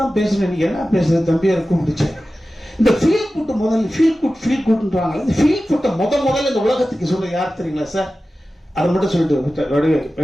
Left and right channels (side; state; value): both; normal; correlation 0.95